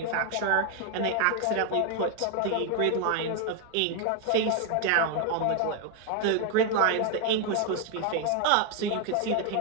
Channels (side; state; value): both; different; correlation 0.01